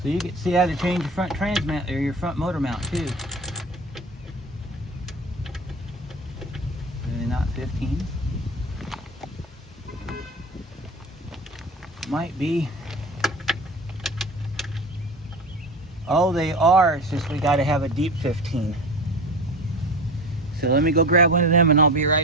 So you can see how to change your front transmount or your front motor mount too. Really not 15. Might be. Oh, they are. It's just we got to have a deep 15. So let me go grab one of them and I'll be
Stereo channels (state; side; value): normal; both; correlation 0.32